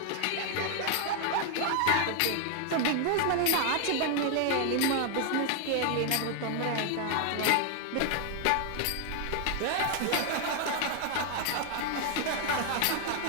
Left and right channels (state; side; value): different; both; correlation 0.00